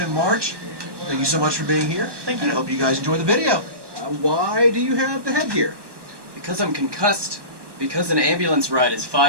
March, thank you so much for being here. Thank you. And I hope you guys enjoy the video. Why do you have the headgear? Because I'm concussed. Because an ambulance ride is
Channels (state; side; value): late; left; 1.2 ms